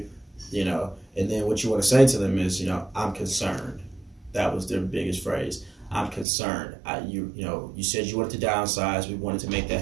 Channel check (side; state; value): left; drops out; at 6.2 s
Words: And then what you want to say to them is, I'm concerned. That was their biggest phrase. I'm concerned. You said you wanted to downsize. We wanted to make